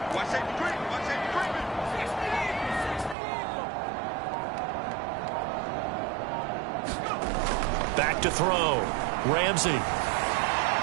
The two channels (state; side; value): drops out; left; at 3.2 s